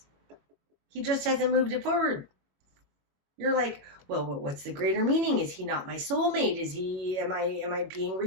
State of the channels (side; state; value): left; late; 22 ms